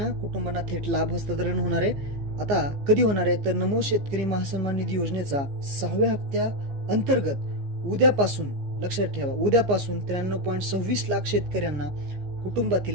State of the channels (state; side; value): late; left; 14 ms